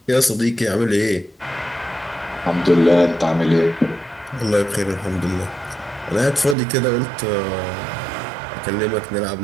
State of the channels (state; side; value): drops out; left; at 6.6 s